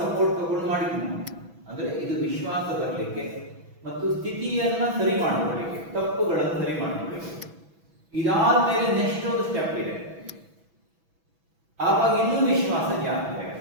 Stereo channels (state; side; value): late; left; 6.1 ms